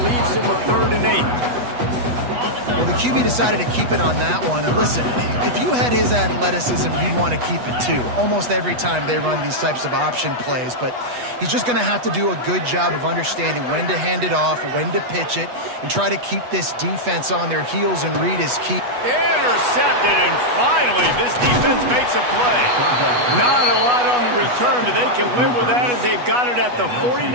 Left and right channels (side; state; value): left; late; 8.2 ms